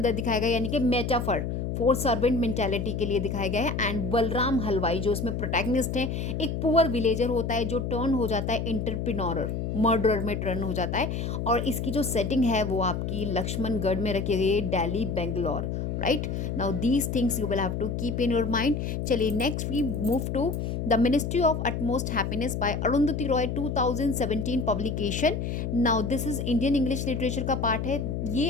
दिखाया गया यानी कि मेटाफर फॉर सर्वेंट मेंटेलिटी के लिए दिखाया गया है। एंड बलराम हलवाई जो इसमें प्रोटैगनिस्ट हैं, एक पुअर विलेजर होता है जो टर्न हो जाता है एंटरप्रेन्योर, मर्डरर में टर्न हो जाता है। और इसकी जो सेटिंग है वो आपकी लक्ष्मणगढ़ में रखी गई है, Delhi, Bangalore, right. Now these things you will have to keep in your mind. चलिए next we move to the ministry of utmost happiness by Arundhati Roy, 2017 publication. Now this is Indian English literature का पार्ट है। ये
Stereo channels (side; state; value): left; noise; hum, 2 dB below the sound